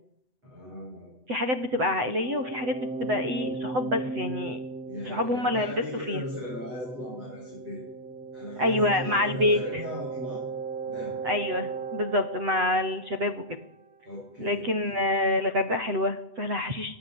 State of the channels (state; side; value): late; left; 8.0 ms